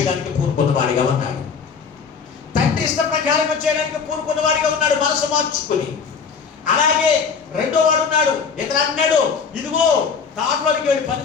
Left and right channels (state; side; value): quieter; right; 5.9 dB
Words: పూనుకున్న వాడిగా ఉన్నాడు. తండ్రి ఇష్ట ప్రకారంగా చేయడానికి పూనుకున్న వాడిగా ఉన్నాడు మనసు మార్చుకుని. అలాగే రెండో వాడు ఉన్నాడు. ఇతను అన్నాడు ఇదిగో తాటలోకి వెళ్ళి పని